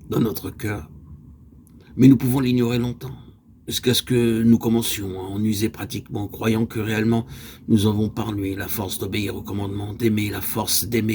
dans notre cœur. Mais nous pouvons l'ignorer longtemps, jusqu'à ce que nous commencions à en user pratiquement, croyant que réellement nous avons par lui la force d'obéir au commandement, d'aimer, la force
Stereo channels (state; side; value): identical; both; correlation 1.00